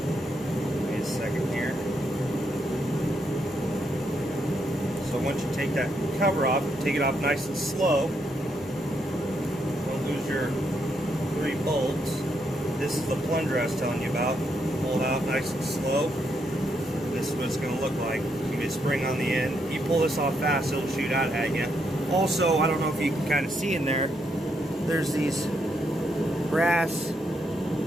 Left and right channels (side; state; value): both; normal; correlation 0.78